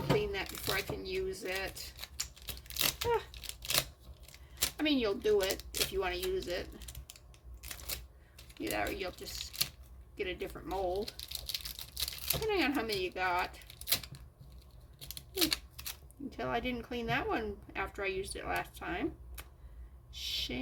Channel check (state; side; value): identical; both; correlation 1.00